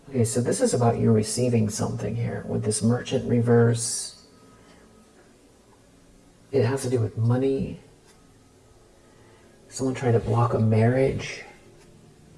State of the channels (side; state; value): both; identical; correlation 1.00